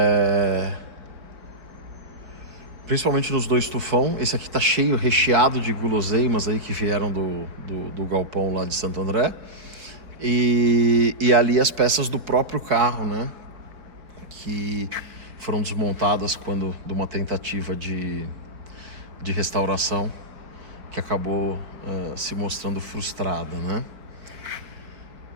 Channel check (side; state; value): left; late; 4.2 ms